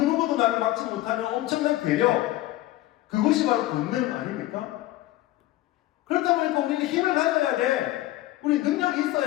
나를 막지 못하는 엄청난 괴력, 그것이 바로 권능 아닙니까? 그렇다 보니까 우리는 힘을 가져야 돼. 우리 능력이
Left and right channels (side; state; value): right; quieter; 16.3 dB